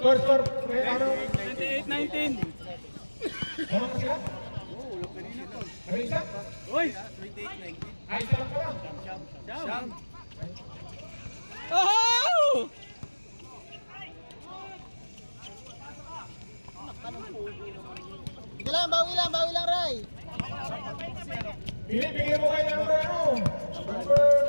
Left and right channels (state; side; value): inverted; both; correlation -1.00